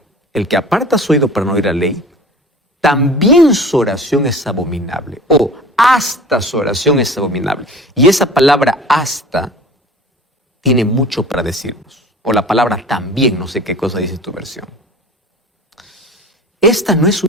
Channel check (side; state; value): both; normal; correlation 0.42